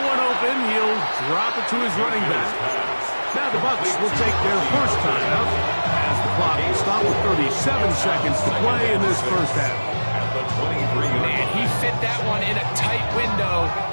open. He'll drop it to his running back. Now the Bucs will take their first time out as the clock will stop with 37 seconds to play in this first half. Man, he fit that one in a tight window.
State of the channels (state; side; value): inverted; both; correlation -1.00